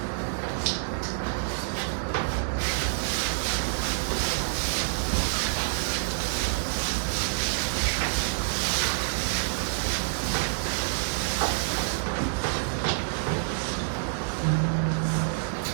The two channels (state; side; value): silent; left; digital silence